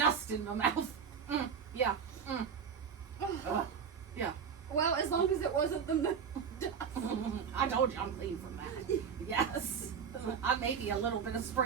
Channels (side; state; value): left; quieter; 6.8 dB